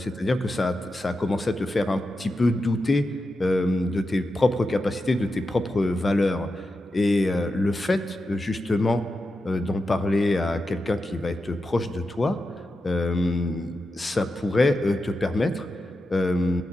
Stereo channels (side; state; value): both; normal; correlation 0.89